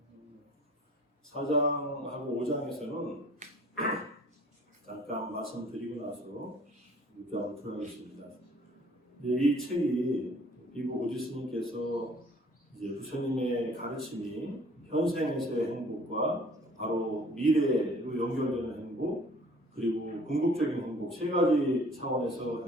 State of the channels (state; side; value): normal; both; correlation 0.53